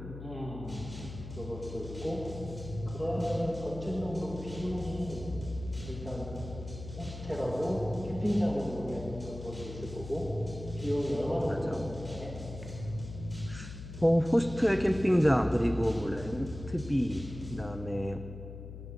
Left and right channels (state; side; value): noise; left; hum, 11 dB below the sound